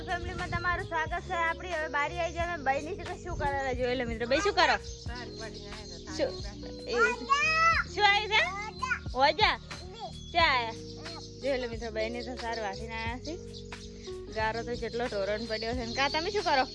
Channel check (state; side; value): identical; both; correlation 1.00